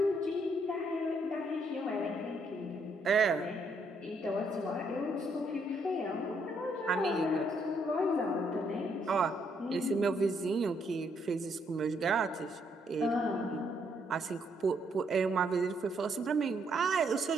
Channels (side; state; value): both; normal; correlation 0.72